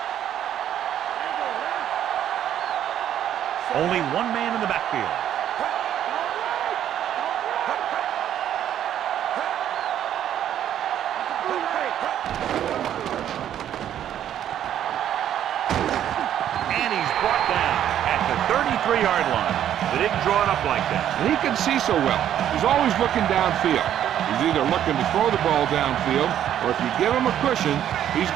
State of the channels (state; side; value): quieter; left; 10.7 dB